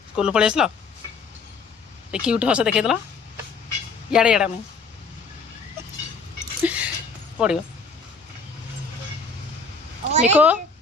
स्कूल पलि आसल क्यूट हस देखेदेल इे इड़ा मुझे पड़ो मिको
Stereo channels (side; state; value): right; quieter; 4.4 dB